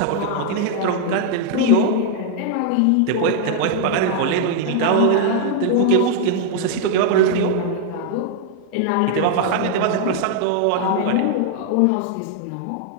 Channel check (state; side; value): different; both; correlation 0.00